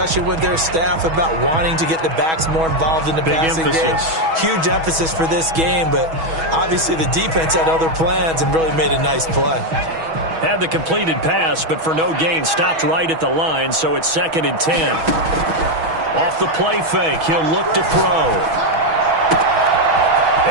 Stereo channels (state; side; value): late; left; 6.2 ms